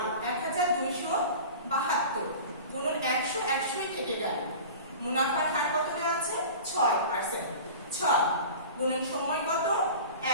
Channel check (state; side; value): inverted; both; correlation -0.37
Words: 1272 গুণন 100, 100ই থেকে গেল। মুনাফার হার কত দেওয়া আছে? 6%, 6 গুণন সময় কত?